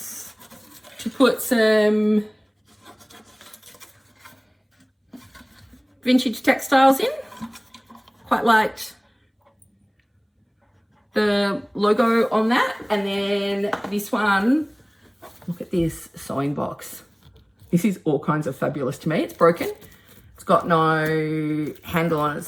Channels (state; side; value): identical; both; correlation 1.00